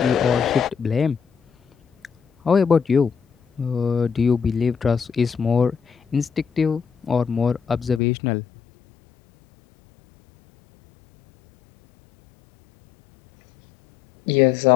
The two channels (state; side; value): drops out; right; at 8.0 s